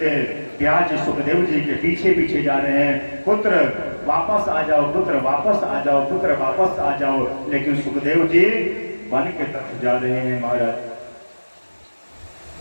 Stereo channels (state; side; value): inverted; both; correlation -1.00